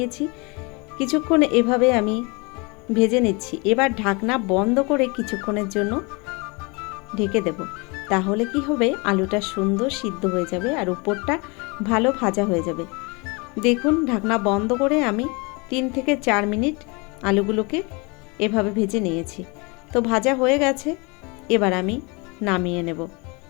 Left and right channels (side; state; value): right; quieter; 29.0 dB